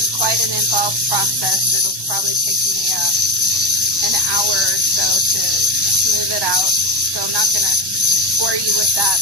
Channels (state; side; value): late; left; 1.1 ms